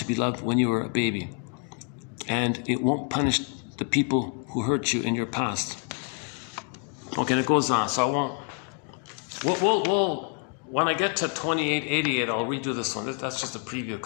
be loved when you were a baby. And it won't punish the people who hurt you in your past. Okay, and it goes on. So I won't. We'll when I get to 2888, I'll redo this one. That's just a preview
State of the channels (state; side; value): quieter; right; 36.8 dB